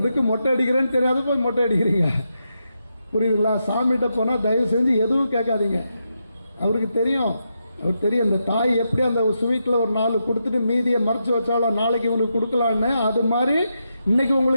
மொட்டை அடிக்கிறேன்னு தெரியாத போய் மொட்டை அடிக்கிறீங்க. புரியுதுங்களா? சாமிகிட்ட போனால் தயவு செஞ்சு எதுவும் கேட்காதீங்க. அவருக்கு தெரியும் அவர் தெரியும் இந்த தாய் எப்படி அந்த ஸ்வீட்டில் ஒரு 4 கொடுத்துட்டு மீதியை மறைச்சு வச்சாலும் நாளைக்கு உங்களுக்கு கொடுக்கலான்னு, அது மாதிரி இன்னைக்கு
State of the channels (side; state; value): both; inverted; correlation -0.84